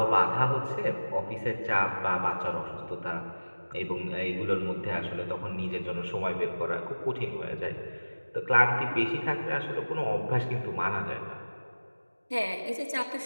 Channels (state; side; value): inverted; both; correlation -1.00